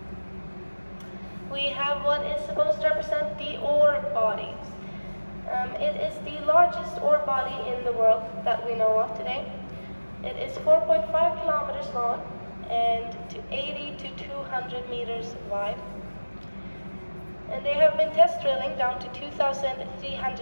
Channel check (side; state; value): both; inverted; correlation -1.00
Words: we have what is supposed to represent the ore bodies. It is the largest ore body in the world that we know of today. It is 4.5 kilometers long and 80 to 200 meters wide. And they have been test drilling down to